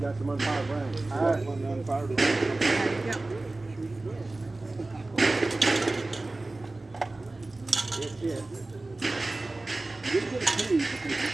got some unfired rounds. I got one unfired round. That's it. You didn't get a key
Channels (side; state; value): left; quieter; 3.0 dB